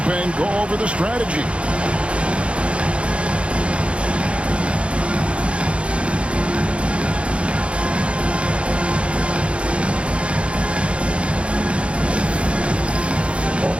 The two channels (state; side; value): late; left; 0.060 ms